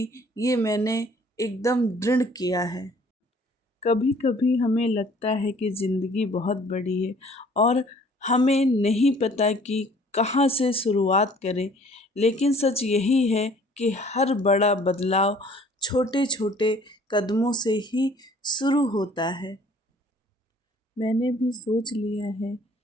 ये मैंने एकदम दृढ़ किया है। कभी कभी हमें लगता है कि ज़िंदगी बहुत बड़ी है और हमें नहीं पता कि कहाँ से शुरुआत करें, लेकिन सच यही है कि हर बड़ा बदलाव छोटे छोटे कदमों से ही शुरू होता है। मैंने भी सोच लिया है,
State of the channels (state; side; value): normal; both; correlation 0.55